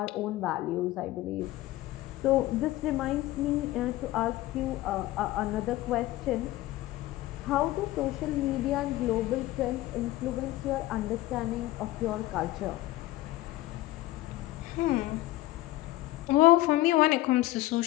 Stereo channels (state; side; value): quieter; right; 16.9 dB